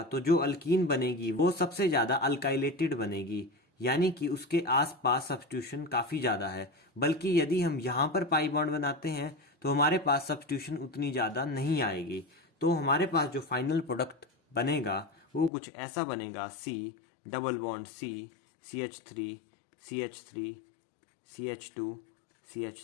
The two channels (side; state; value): right; drops out; at 15.5 s